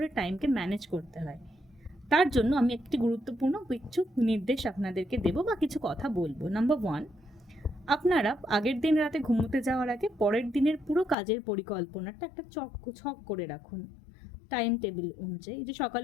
টাইমকে ম্যানেজ করতে হয়। তার জন্য আমি একটি গুরুত্বপূর্ণ কিছু নির্দেশ আপনাদেরকে দেবো বা কিছু কথা বলবো। নাম্বার 1, আপনারা আগের দিন রাতে ঘুমোতে যাওয়ার আগে পরের দিনের পুরো কাজের পরিকল্পনাটা একটা ছক করে রাখুন, টাইম টেবিল অনুযায়ী, যে সকাল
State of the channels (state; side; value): drops out; right; at 11.2 s